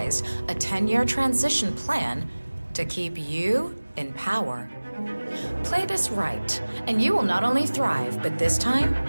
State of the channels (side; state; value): both; inverted; correlation -1.00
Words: a 10-year transition plan to keep you in power. Play this right, and you will not only thrive, but this time,